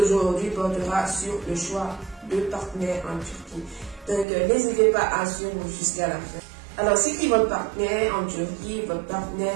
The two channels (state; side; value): drops out; left; at 4.2 s